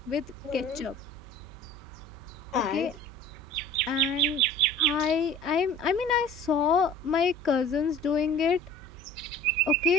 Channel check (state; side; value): noise; right; hum, 19 dB below the sound